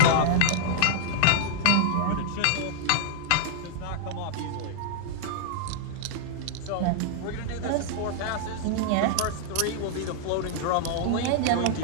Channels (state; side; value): different; both; correlation -0.01